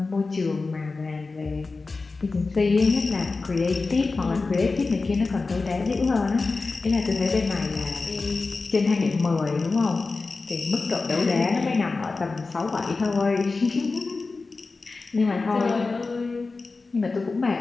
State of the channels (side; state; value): right; quieter; 3.9 dB